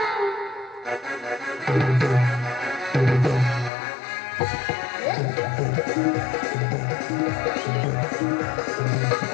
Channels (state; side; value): drops out; right; at 3.7 s